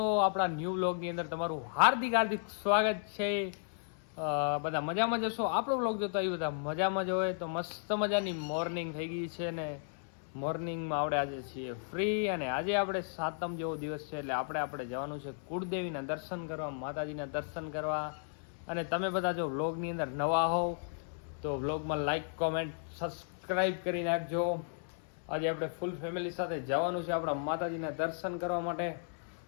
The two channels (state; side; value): silent; right; 55 dB below the other